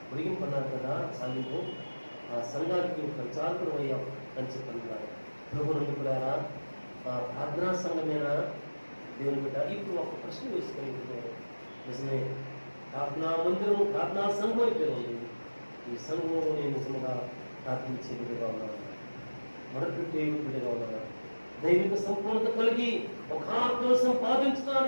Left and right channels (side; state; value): both; inverted; correlation -1.00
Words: పొడిగింపన్నారు కదా చాలింపు. ఆ సంఘానికి ప్రచారకుడు అయ్యాం అని చెప్పన్నారు. ప్రభు నుండి కూడా ఆ ప్రార్థనా సంఘమేనా దేవుని బిడ్డ? ఇప్పుడు ఒక ప్రశ్న వేసుకొని నిజమే, ప్రార్థనా మందిరం ప్రార్థనా సంఘం అయితే ఉంది. ఈ సంఘంలో నేను నిజంగా ప్రార్థించే బిడ్డగా ఉన్నాను, మరొకటి బిడ్డగా ఉన్నాను, దైవిక సంపూర్ణత కలిగి ఒక ఆత్మను